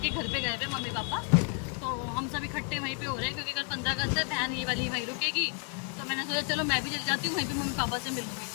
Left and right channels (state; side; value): quieter; right; 38.3 dB